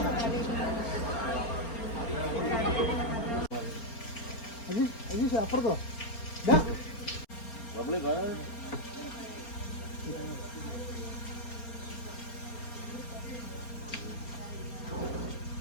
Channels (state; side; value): late; right; 4.3 ms